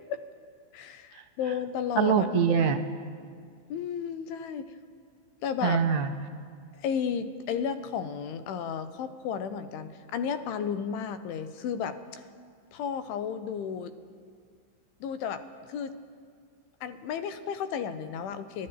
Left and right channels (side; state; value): right; late; 15 ms